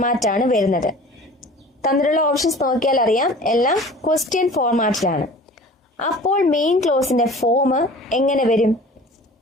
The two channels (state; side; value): normal; both; correlation 0.43